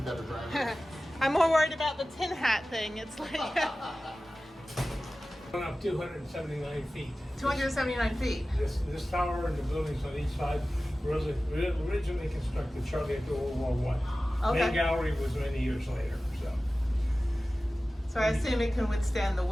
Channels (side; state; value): both; normal; correlation 0.96